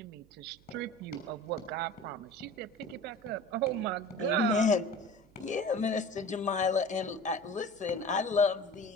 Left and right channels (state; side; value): noise; right; hum, 28 dB below the sound